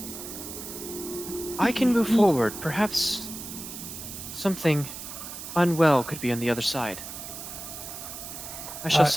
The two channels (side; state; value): right; noise; hiss, 10 dB below the sound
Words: I can move forward. Perhaps something unwell could be on the other side. I shall